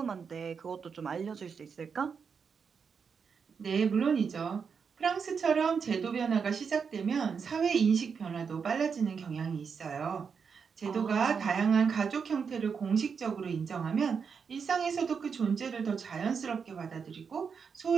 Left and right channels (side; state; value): left; quieter; 6.1 dB